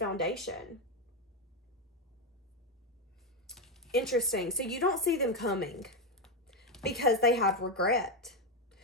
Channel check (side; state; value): both; normal; correlation 0.07